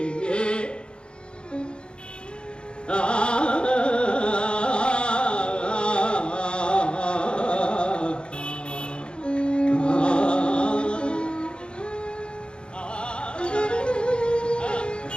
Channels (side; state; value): right; late; 0.054 ms